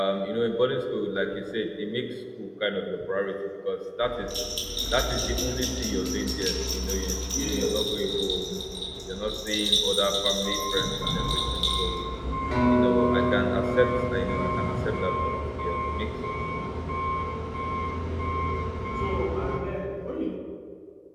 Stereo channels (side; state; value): both; identical; correlation 1.00